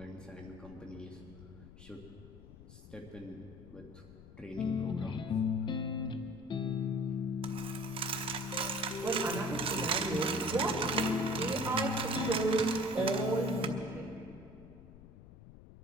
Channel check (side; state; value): left; noise; rumble, 18 dB below the sound